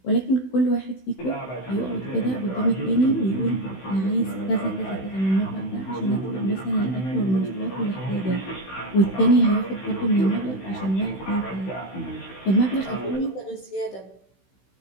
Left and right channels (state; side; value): late; right; 16 ms